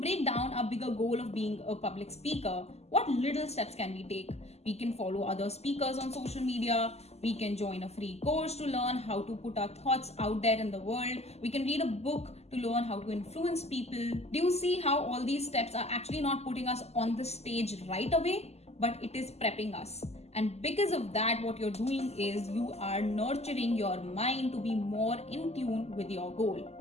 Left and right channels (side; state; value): right; late; 0.30 ms